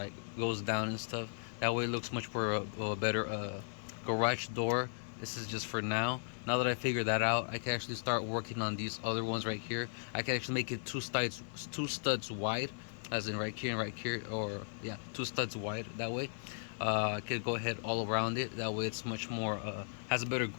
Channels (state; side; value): silent; right; digital silence